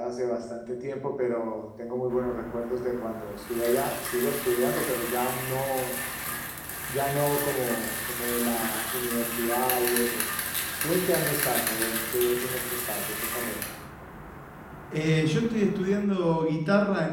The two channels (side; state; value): both; identical; correlation 1.00